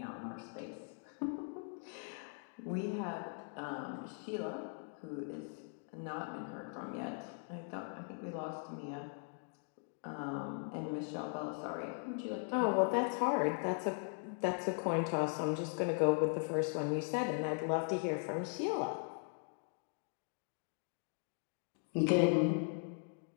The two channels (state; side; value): silent; right; 51 dB below the other